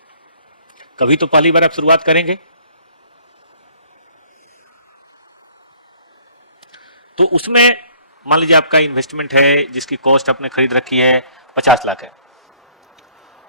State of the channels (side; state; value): both; inverted; correlation -0.58